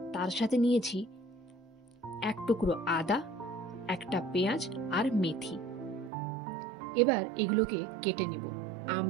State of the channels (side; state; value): left; drops out; at 6.1 s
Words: তার সাথে নিয়েছি 1 টুকরো আদা, 1টা পেঁয়াজ আর মেথি। এবার এগুলোকে কেটে নেব।